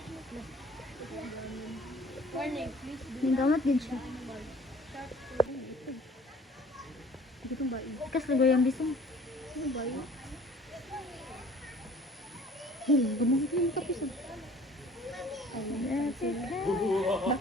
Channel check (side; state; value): both; normal; correlation 0.51